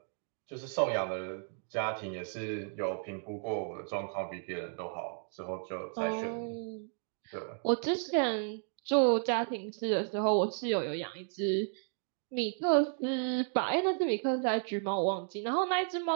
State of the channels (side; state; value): left; silent; 55 dB below the other